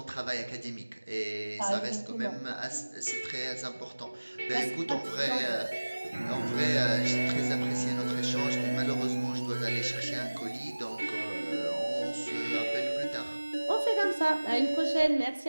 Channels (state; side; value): inverted; both; correlation -1.00